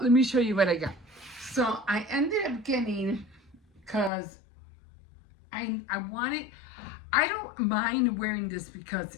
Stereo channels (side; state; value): right; drops out; at 4.1 s